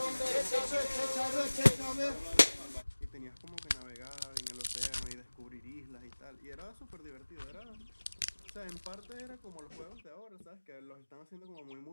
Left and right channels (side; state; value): both; inverted; correlation -1.00